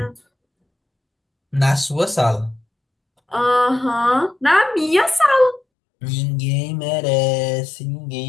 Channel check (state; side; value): drops out; right; at 5.6 s